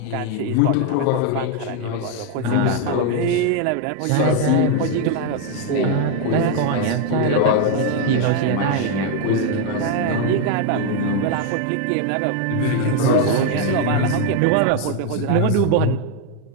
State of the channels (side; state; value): both; different; correlation 0.01